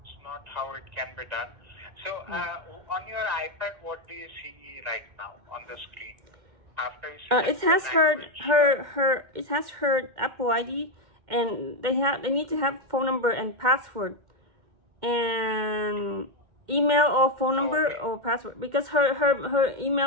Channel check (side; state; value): left; late; 2.1 ms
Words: not how it can be done. So on your iPad, what do you see right now on the screen? After it has it has her Apple ID, and they need to have phone number and password, and email or phone number or password, because her